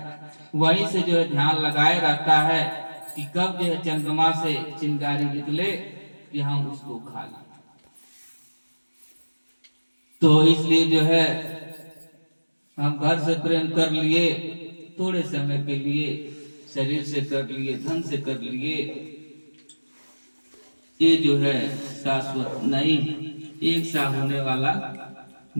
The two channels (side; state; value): both; inverted; correlation -1.00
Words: वहीं से जो है ध्यान लगाए रहता है कि कब जो है चंद्रमा से चिंगारी निकले कि हम उसको खा लें। तो इसलिए जो है हम घर से प्रेम कर लिए थोड़े समय के लिए, शरीर से कर लिए, धन से कर लिए, ये जो है शाश्वत नहीं, एक सा होने वाला